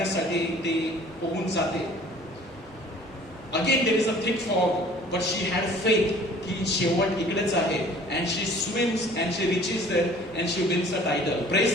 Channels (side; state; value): both; normal; correlation 0.51